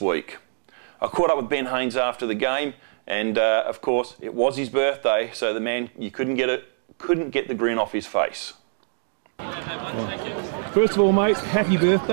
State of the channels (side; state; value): left; silent; digital silence